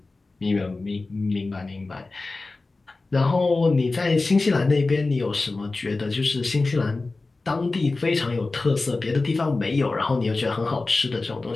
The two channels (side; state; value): right; quieter; 3.5 dB